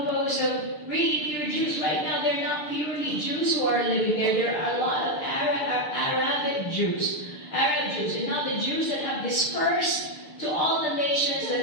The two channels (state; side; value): late; right; 6.7 ms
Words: of really pure Jews, right now they're not purely Jews who are living there. There are a lot of Arabs Jews. And now the Jews that have dispersed to all the nations